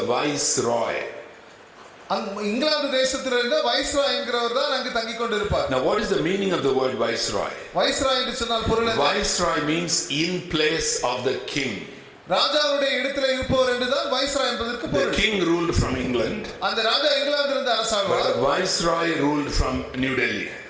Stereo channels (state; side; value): identical; both; correlation 1.00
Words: viceroy. England தேசத்திலிருந்து வைஸ்ராய் என்கிறவர் தான் அங்கு தங்கிக் கொண்டிருப்பார். Now what is the meaning of the word viceroy? Viceroy என்று சொன்னால் பொருள் என்ன? Viceroy means in place of the king. ராஜாவுடைய இடத்திலே இருப்பவர் என்றுதான் வைஸ்ராய் என்பதற்கு பொருள். The king ruled from England. அந்த ராஜா இங்கிலாந்திலிருந்து அரசாழ்வார். But the viceroy ruled from New Delhi.